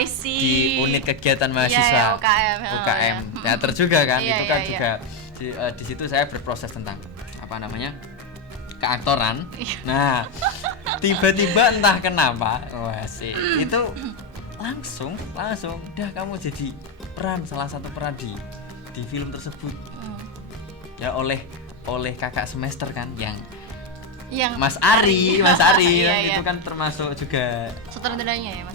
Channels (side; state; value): both; normal; correlation 0.06